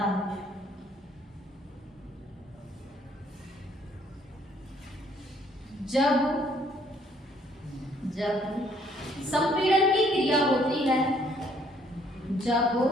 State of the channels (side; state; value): both; normal; correlation 0.64